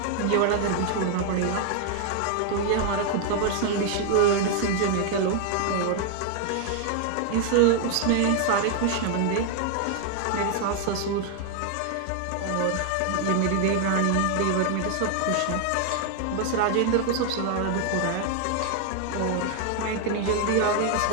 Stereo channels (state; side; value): different; both; correlation 0.00